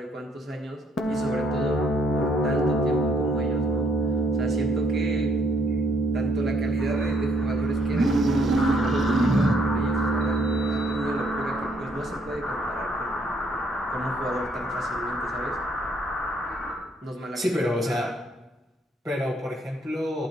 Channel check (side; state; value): both; normal; correlation 0.68